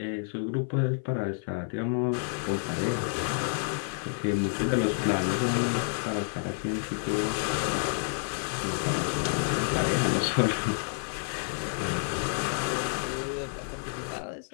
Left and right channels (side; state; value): right; silent; 55 dB below the other